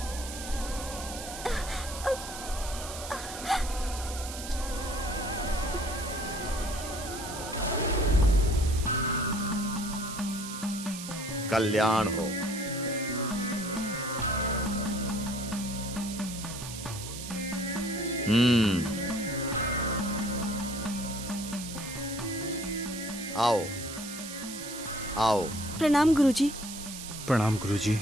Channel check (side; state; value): right; noise; hiss, 9 dB below the sound